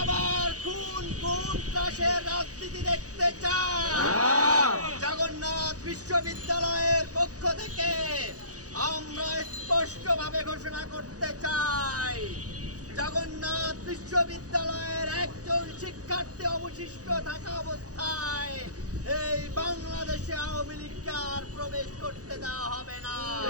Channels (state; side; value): late; left; 0.67 ms